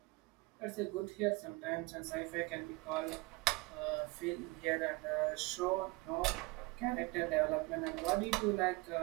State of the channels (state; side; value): quieter; left; 23.5 dB